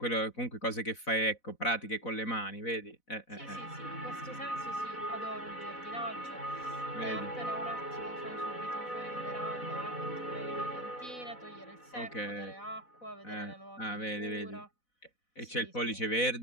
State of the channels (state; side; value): late; right; 4.0 ms